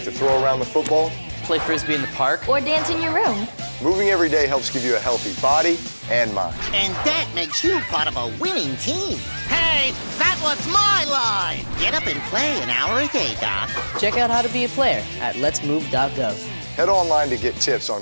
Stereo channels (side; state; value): both; inverted; correlation -1.00